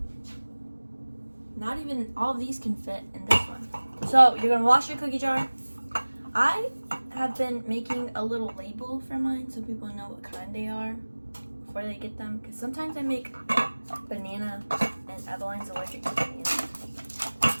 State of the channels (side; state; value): both; inverted; correlation -1.00